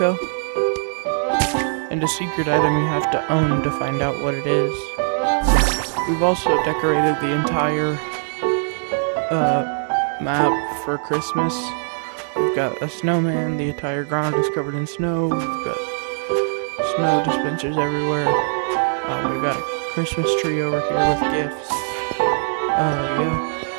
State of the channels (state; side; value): silent; left; 65 dB below the other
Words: and a secret item you have to own to find out what it is. We've also decorated the entire map for Christmas. We've got a snowman, the entire ground is covered in snow, we've got snow dispensers everywhere. We've got a Christmas tree over here with gifts. Yeah.